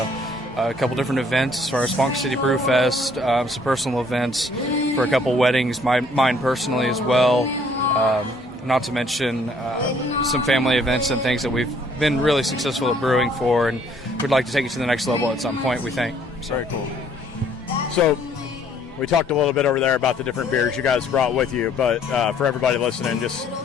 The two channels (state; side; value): normal; both; correlation 0.62